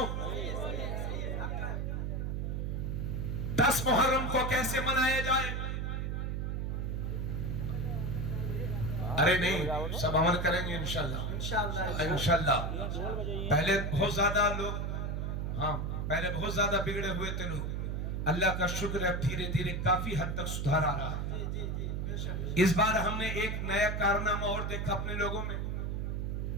10 मुहर्रम को कैसे मनाया जाए? अरे नहीं, सब अमल करेंगे इंशाल्लाह। पहले बहुत ज्यादा लोग, हाँ पहले बहुत ज्यादा बिगड़े हुए थे लोग। अल्लाह का शुक्र है, धीरे धीरे काफी हद तक सुधार आ रहा है। इस बार हमने एक नया कारनामा और देखा अपने लोगों में।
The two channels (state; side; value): noise; right; hum, 1 dB below the sound